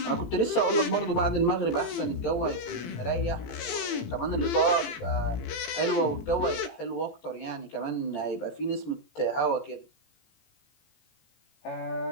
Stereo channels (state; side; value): late; right; 18 ms